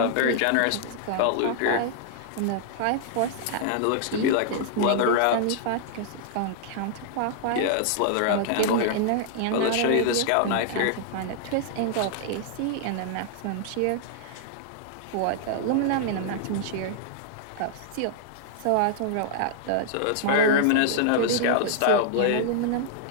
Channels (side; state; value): both; different; correlation -0.01